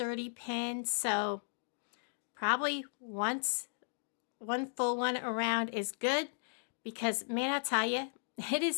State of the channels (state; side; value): silent; right; digital silence